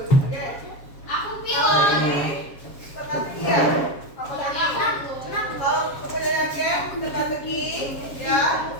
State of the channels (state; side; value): late; right; 7.3 ms